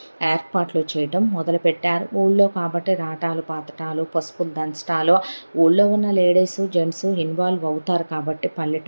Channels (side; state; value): both; inverted; correlation -1.00